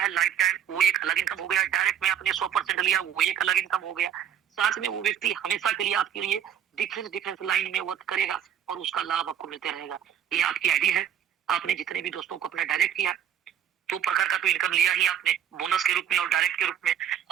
लाइफ टाइम, वो एक अलग इनकम हो गया। डायरेक्ट में आपने 100% लिया, वो एक अलग इनकम हो गया। साथ में वो व्यक्ति हमेशा के लिए आपके लिए डिफरेंस लाइन में वर्क करेगा, और उसका लाभ आपको मिलते रहेगा। ये आपकी आईडी है, आपने जितने भी दोस्तों को अपना डायरेक्ट किया, 2 प्रकार का तो इनकम लिया ही आपने, बोनस के रूप में और डायरेक्ट के रूप में।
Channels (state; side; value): quieter; left; 9.4 dB